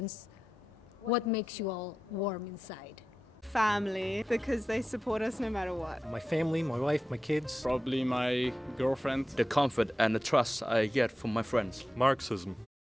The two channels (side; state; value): both; normal; correlation 0.91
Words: what makes you all warm inside? Family, because they support us no matter what. My family, my wife, my kids. Probably my girlfriend. The comfort and the trust I get from my friends. Marxism.